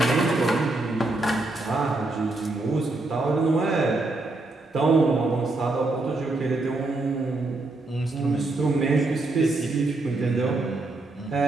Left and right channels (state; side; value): quieter; left; 3.0 dB